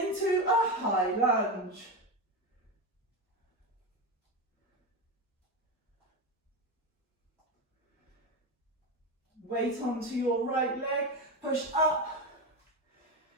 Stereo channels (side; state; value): both; normal; correlation 0.16